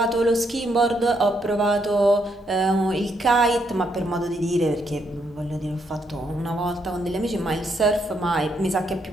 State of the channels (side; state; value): both; normal; correlation 0.76